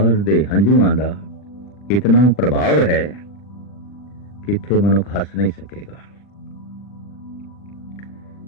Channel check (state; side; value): late; right; 40 ms